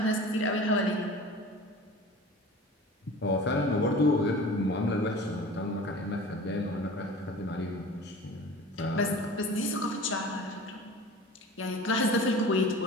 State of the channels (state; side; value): normal; both; correlation 0.39